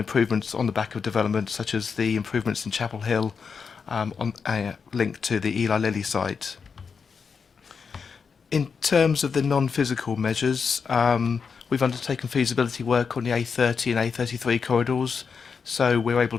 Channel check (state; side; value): quieter; right; 5.8 dB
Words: on the back of development, such as the improvements in Chapel Hill, linked to the Eli Lilly site. In terms of the non-physical measures, we've undertaken feasibility work on the A30 and A33 corridors, so we're